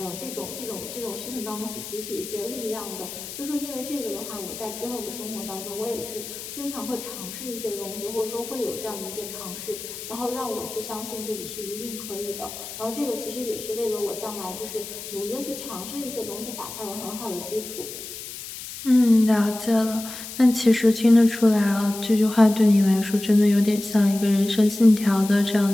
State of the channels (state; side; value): noise; left; hiss, 10 dB below the sound